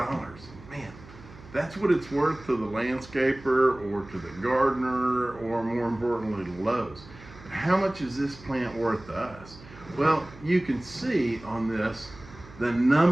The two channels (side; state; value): right; noise; hum, 19 dB below the sound